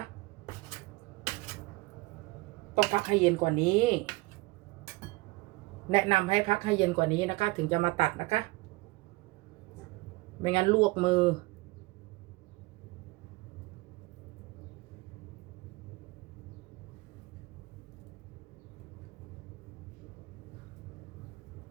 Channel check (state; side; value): quieter; left; 22.3 dB